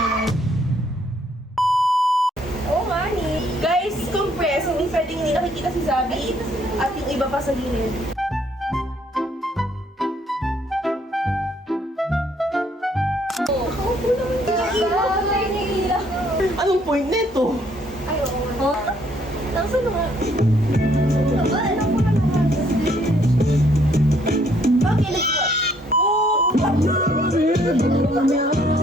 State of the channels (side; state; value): both; normal; correlation 0.66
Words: Oo nga ni. Guys, compress. Hindi pwedeng hindi nakikita si Zabi at yung iba pa sa gilid. Anong point nito? Ay, oo nga. Nasaan na nga? Bakit nag-watch?